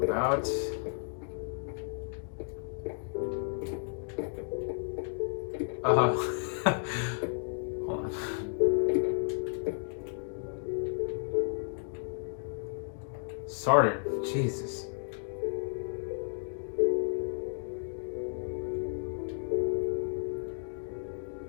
about hold on. Sartre, Jesus.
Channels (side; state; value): right; silent; digital silence